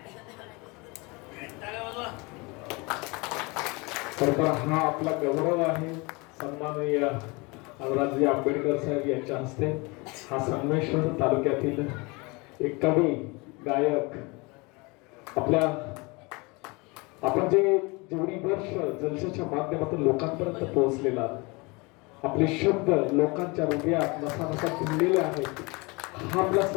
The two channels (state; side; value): quieter; right; 26.8 dB